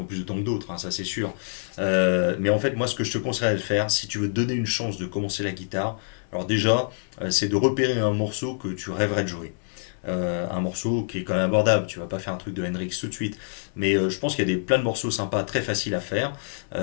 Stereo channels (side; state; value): right; silent; 61 dB below the other